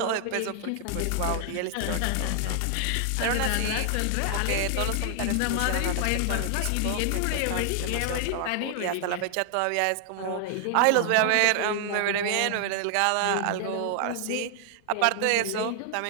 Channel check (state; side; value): different; both; correlation 0.00